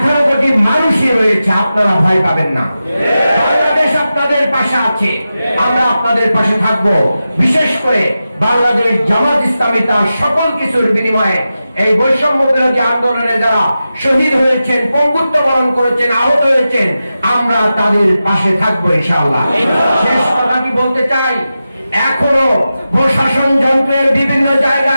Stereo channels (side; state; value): both; inverted; correlation -0.92